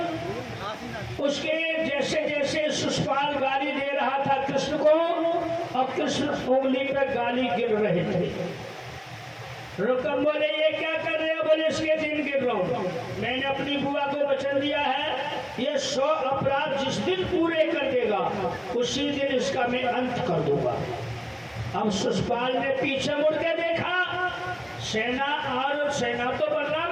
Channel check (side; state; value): both; identical; correlation 1.00